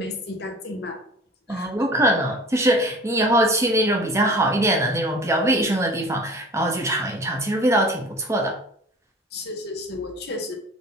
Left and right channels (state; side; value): normal; both; correlation 0.42